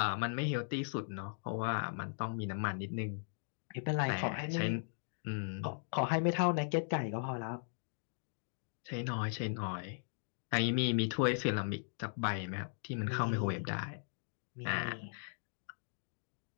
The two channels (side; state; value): right; silent; digital silence